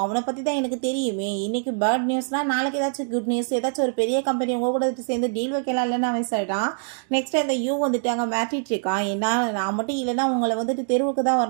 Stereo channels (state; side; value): silent; left; 63 dB below the other